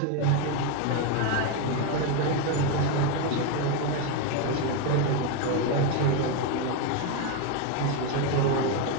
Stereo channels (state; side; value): different; both; correlation 0.02